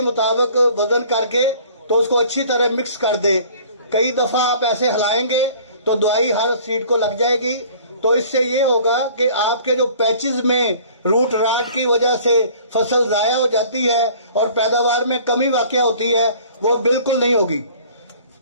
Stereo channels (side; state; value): both; inverted; correlation -0.50